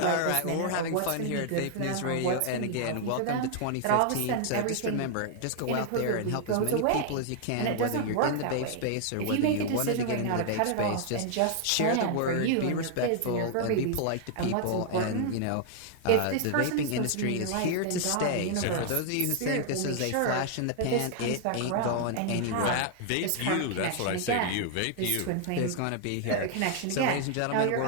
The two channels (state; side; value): different; both; correlation 0.00